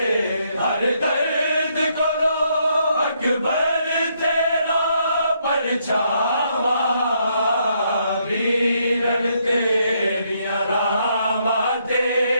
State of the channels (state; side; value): inverted; both; correlation -0.74